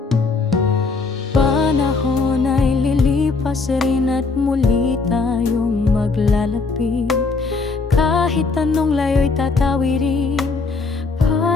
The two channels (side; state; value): right; quieter; 4.1 dB